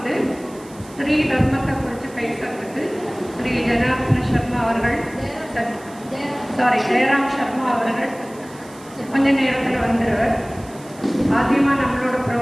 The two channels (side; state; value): right; noise; hiss, 22 dB below the sound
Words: ஸ்ரீ தர்மத்தை குறித்து பேசுறதுக்கு ஸ்ரீ ஜனார்தன சர்மா அவர்கள், ஜெயராம் சர்மா அவர்கள் கொஞ்ச நேரத்தில் வந்துடுவார். ஆദ്യமாக நம்மளோட